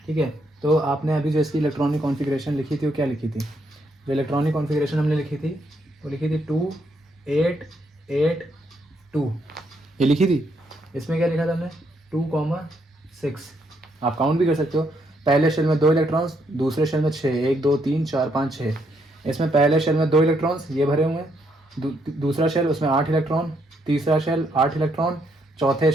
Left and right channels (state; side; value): normal; both; correlation 0.75